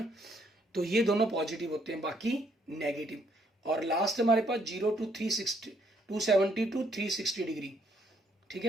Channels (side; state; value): both; normal; correlation 0.69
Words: तो ये दोनों पॉजिटिव होते हैं, बाकी नेगेटिव। और लास्ट हमारे पास 0 to 360, 270 to 360 डिग्री, ठीक